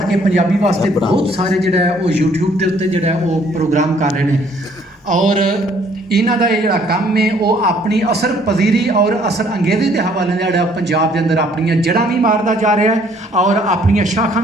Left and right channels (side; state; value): both; normal; correlation 0.62